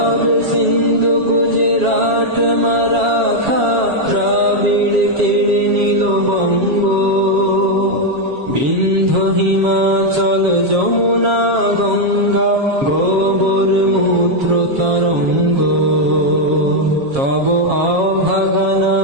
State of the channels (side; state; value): left; late; 7.3 ms